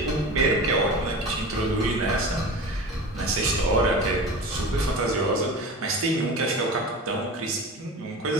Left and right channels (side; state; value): both; normal; correlation 0.32